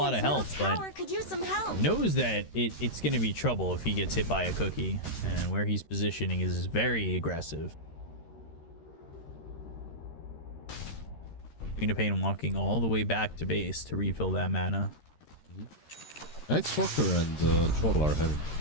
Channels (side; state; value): right; late; 13 ms